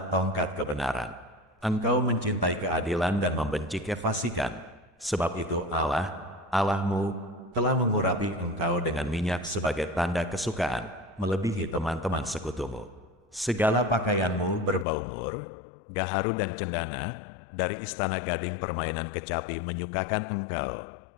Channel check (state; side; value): drops out; right; at 14.9 s